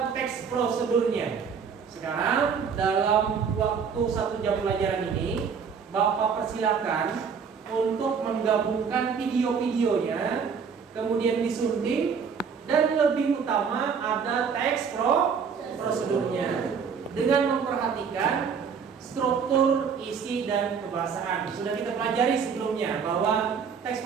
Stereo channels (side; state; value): left; quieter; 6.4 dB